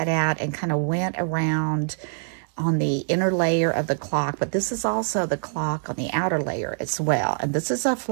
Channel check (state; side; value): silent; left; 62 dB below the other